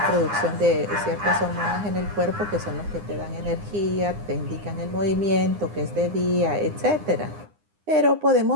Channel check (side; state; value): left; late; 9.8 ms